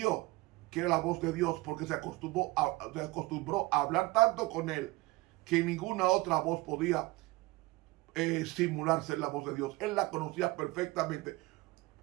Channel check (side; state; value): left; quieter; 21.7 dB